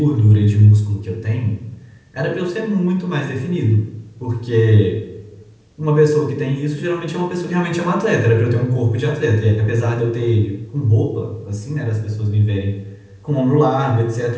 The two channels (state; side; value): identical; both; correlation 1.00